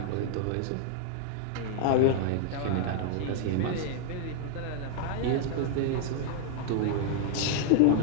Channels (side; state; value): both; different; correlation 0.00